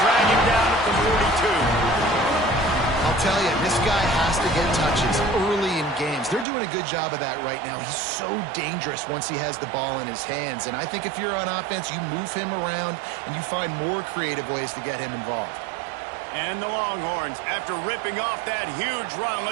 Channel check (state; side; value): drops out; left; at 6.5 s